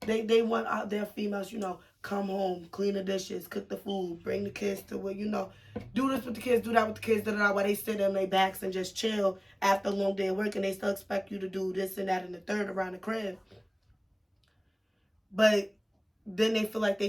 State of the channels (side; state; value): both; identical; correlation 1.00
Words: They want out their females, come home, clean the dishes, cook the food, bring the kids to where, do this with the kids, do that with the kids, while they sit on their backs and just chill after a long day of work, and they still expect you to do this and that and the third around the crib. But then they feel like